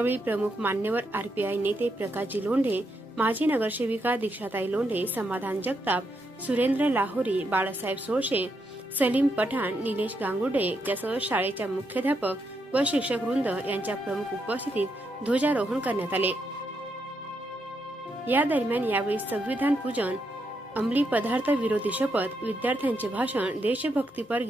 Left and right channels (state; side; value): normal; both; correlation 0.80